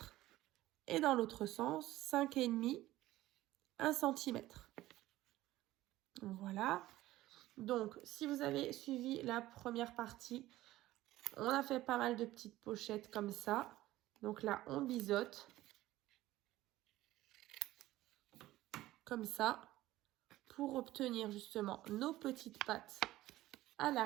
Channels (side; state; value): left; quieter; 16.1 dB